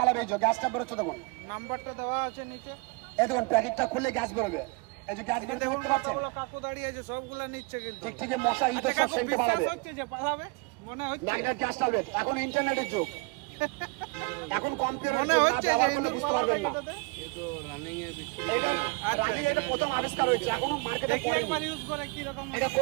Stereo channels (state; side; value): quieter; left; 29.9 dB